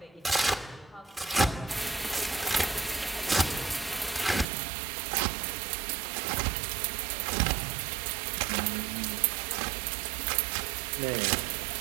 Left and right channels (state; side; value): drops out; left; at 4.5 s